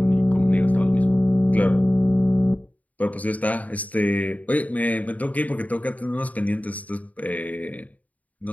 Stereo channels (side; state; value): right; late; 0.072 ms